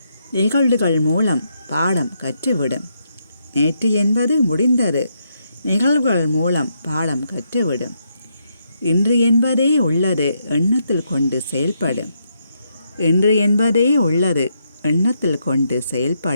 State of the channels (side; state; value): both; inverted; correlation -0.79